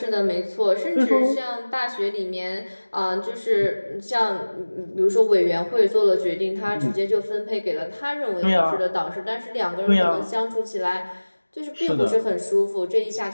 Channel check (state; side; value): inverted; both; correlation -1.00